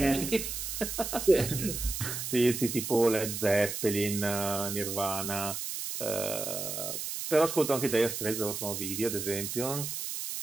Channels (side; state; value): right; noise; hiss, 5 dB below the sound